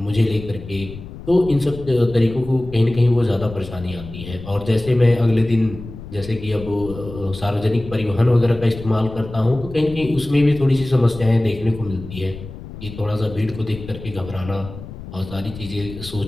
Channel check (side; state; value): left; noise; rumble, 13 dB below the sound